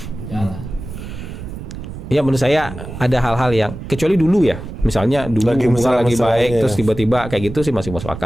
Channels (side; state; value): right; noise; rumble, 10 dB below the sound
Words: Ya menurut saya ada hal-hal yang kecuali dulu ya, misalnya dulu Lagi hubungan lagi baik ya. terus tiba-tiba kayak gitu sih masih masuk